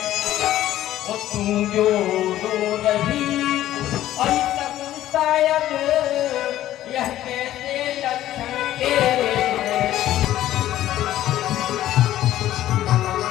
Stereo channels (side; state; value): right; quieter; 13.4 dB